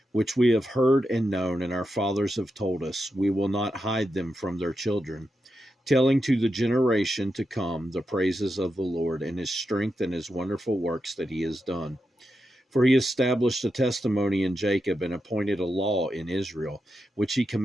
which we have heard and known, and our fathers have told us. We will not hide them from their children, telling to the generation to come the praises of the Lord and his strength and his wonderful works that he has done. For he established a testimony in Jacob and appointed a law in Israel, which he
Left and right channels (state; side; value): normal; both; correlation 0.87